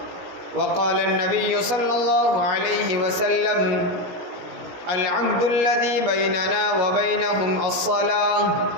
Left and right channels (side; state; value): left; late; 17 ms